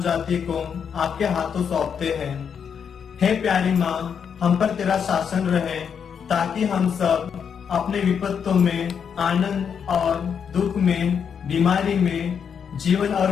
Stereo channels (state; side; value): quieter; right; 7.2 dB